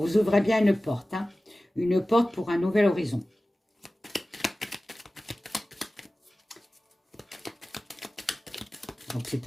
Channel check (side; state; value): both; normal; correlation 0.96